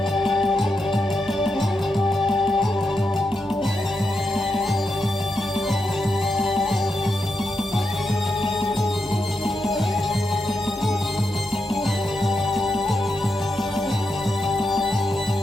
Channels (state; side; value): normal; both; correlation 0.85